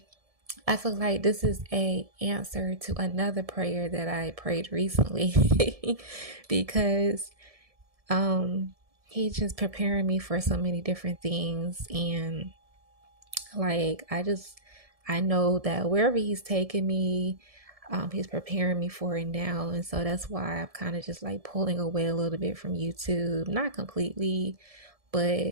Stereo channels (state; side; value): late; left; 1.7 ms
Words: I feel like this is a answer to another prayer that I prayed recently because he's just preparing me for so many different things. And like I know that wherever he's taking me, he's preparing me for it now. And so that's why I'm kind of just like pulling away a little bit from YouTube, not completely,